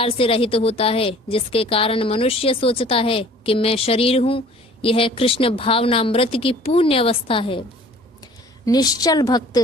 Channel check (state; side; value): normal; both; correlation 0.50